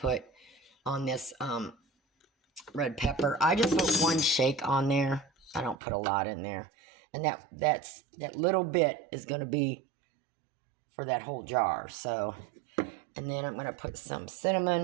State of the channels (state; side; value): drops out; left; at 5.8 s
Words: on this red pepper. I just put 1 shake on there. I don't put a lot in there. And that little bit is going to be for that whole jar. So, and then I'm going to put some